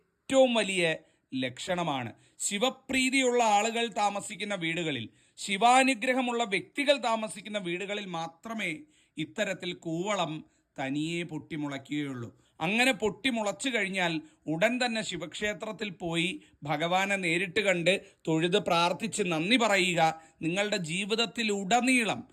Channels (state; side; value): identical; both; correlation 1.00